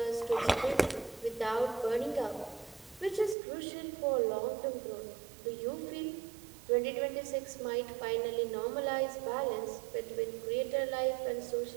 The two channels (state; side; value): drops out; left; at 3.4 s